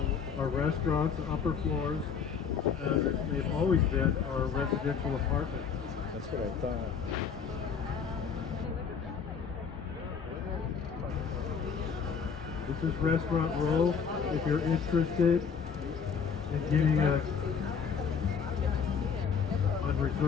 are restaurants. The upper floors, as they've always been, are residential apartments. That's what I thought. This is Restaurant Row. If you're interested in getting on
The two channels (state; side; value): quieter; right; 6.5 dB